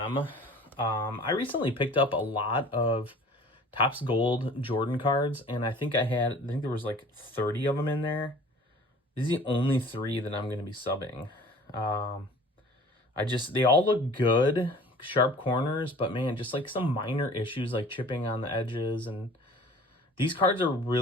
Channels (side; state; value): both; normal; correlation 0.47